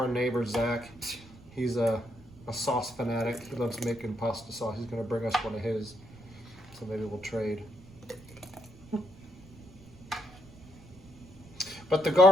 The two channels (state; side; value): noise; right; rumble, 21 dB below the sound